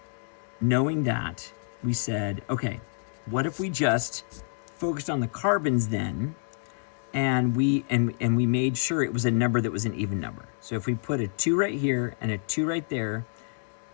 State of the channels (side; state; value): right; silent; digital silence